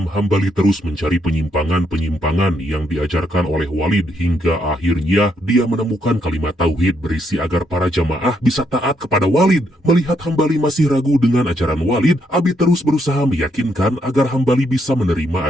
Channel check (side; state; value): both; normal; correlation 0.76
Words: Hambali terus mencari penyimpangan-penyimpangan yang diajarkan oleh Walid hingga akhirnya dia menemukan kalimat tauhid berisi agar para jamaah bisa taat kepada Walid. Melihat Hambali masih ragu dengan ajaran Walid, Abi terus berusaha meyakinkan agar Hambali bisa menerima